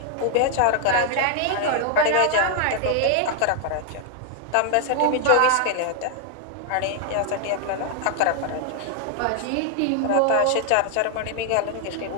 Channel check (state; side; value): different; both; correlation 0.00